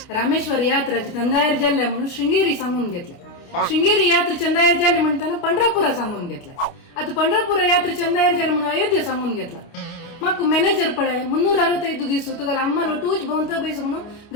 रामेश्वर यात्रा चंदायर जाल्ल्या म्हणून शृंगेरी सांगून घेतलं शृंगेरी यात्रा चंदायर जाल्ले म्हणताना पंढरापुरा सांगून घेतला आता पंढरपुरा यात्रा चंदायर जाल्ले म्हणून अयोध्या सांगून घेतला मग मॅनेजर पळे 365 दिवस तुका आम्हाला टूच भोवता बैस म्हणून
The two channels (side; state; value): right; late; 29 ms